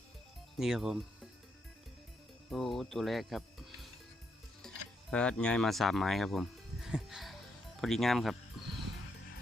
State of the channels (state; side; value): normal; both; correlation 0.78